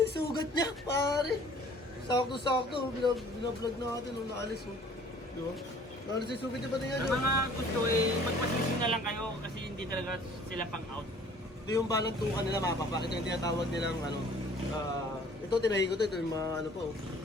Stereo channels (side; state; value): both; normal; correlation 0.53